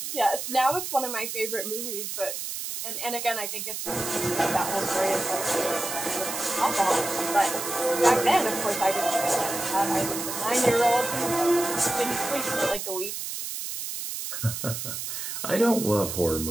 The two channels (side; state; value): right; noise; hiss, 5 dB below the sound